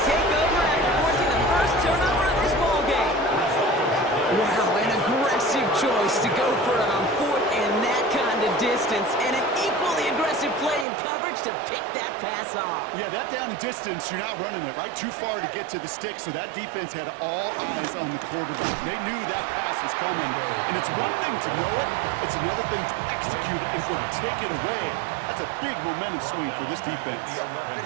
take over after forcing the first turnover of this ball game. Wow, an aggressive choice to go for it on 4th and that kind of distance. And an equally aggressive play in coverage to pick that pass off. Yeah, that down and distance, you're not running it right too far to get to the stick, so that defense had all eyes on the quarterback. They knew that pass was coming, and it's one thing to know it, it's another thing to execute it and go take it away. That's a big momentum swing for this defense.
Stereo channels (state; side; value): drops out; left; at 10.9 s